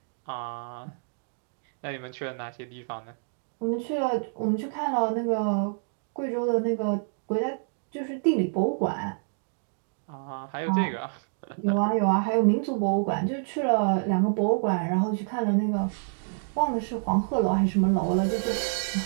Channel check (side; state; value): left; silent; digital silence